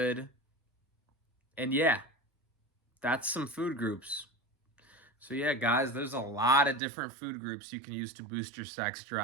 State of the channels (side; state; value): left; drops out; at 6.8 s